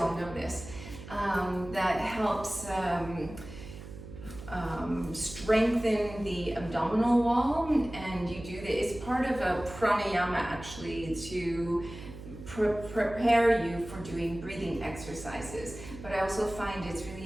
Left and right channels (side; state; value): right; noise; hum, 13 dB below the sound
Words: know this. That helps strengthen the abdominal wall, and you do this. It's part of a pranayama actually to prepare you for doing breathing exercises. But I also find it's